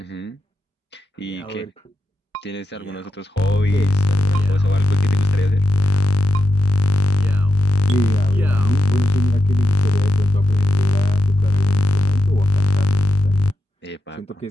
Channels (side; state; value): both; normal; correlation 0.87